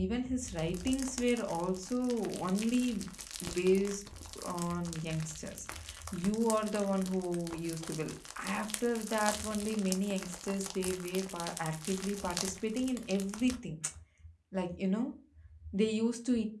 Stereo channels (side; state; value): both; identical; correlation 1.00